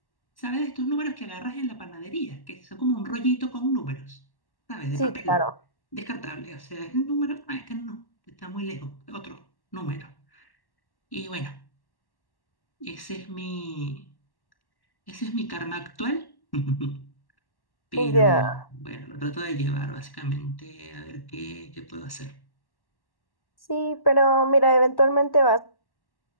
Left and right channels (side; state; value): right; late; 1.1 ms